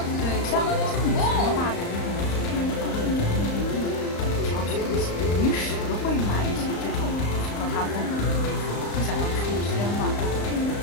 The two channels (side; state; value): right; late; 35 ms